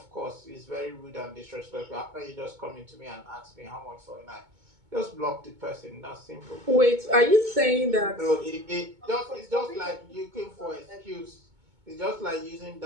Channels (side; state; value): left; late; 2.2 ms